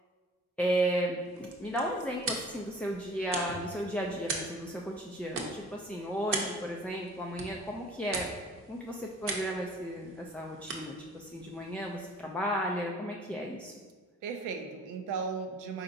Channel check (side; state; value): both; normal; correlation 0.49